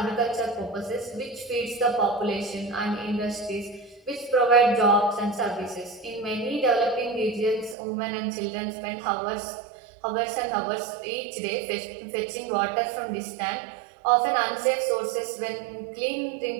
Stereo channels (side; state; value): left; drops out; at 7.8 s